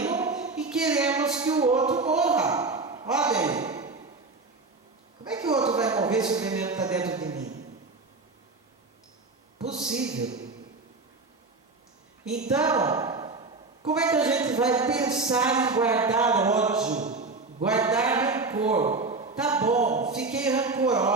e queremos que o outro morra. Olha aí. Como é que o outro vai morrer se o veneno está dentro de mim? Possível. Então, como é que a gente vai pensar em guardar ódio, guardar rancor? Tá bom, fiquei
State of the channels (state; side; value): quieter; left; 3.7 dB